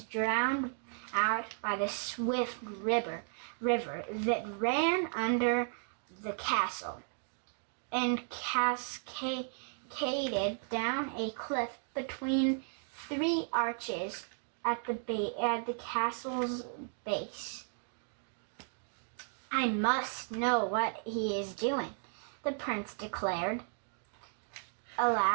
drowned out by the swift river that ran under the castle and cascaded down a cliff between 3 arches at the castle's base. "I must know what he is doing," the prince declared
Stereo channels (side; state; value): left; silent; 55 dB below the other